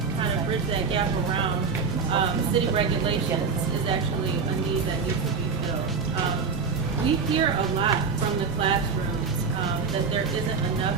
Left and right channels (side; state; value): left; quieter; 5.3 dB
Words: kind of bridge that gap around city regulations is actually a need that needs to be filled. We hear a lot from the classrooms that there isn't